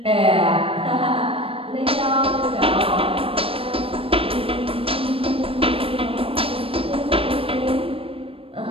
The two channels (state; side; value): late; left; 0.27 ms